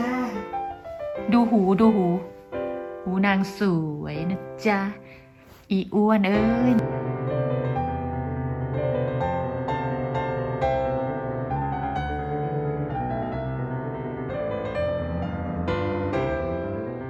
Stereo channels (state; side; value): identical; both; correlation 1.00